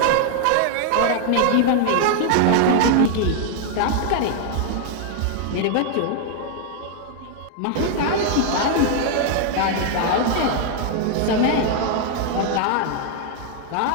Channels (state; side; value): different; both; correlation 0.00